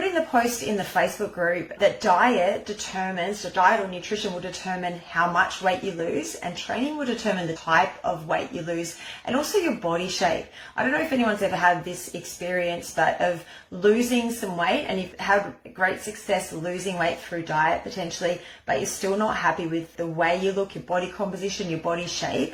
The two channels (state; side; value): identical; both; correlation 1.00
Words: in the post in the Facebook group that diet or nutrition will determine how much weight you lose, and training will determine the type of weight you lose and also your body shape. I don't know if anyone's ever had this experience, but of losing some weight, and you've had great success losing weight through diet potentially, but you're still not happy with the way you look, your body composition, your body